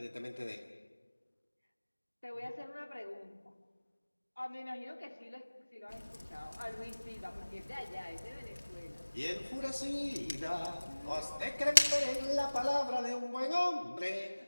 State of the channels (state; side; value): inverted; both; correlation -1.00